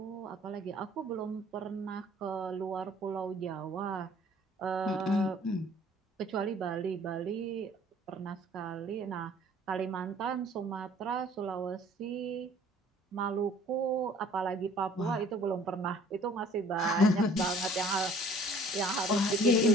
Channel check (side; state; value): both; normal; correlation 0.54